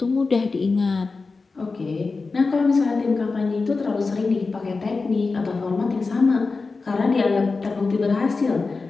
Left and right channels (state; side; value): quieter; right; 4.1 dB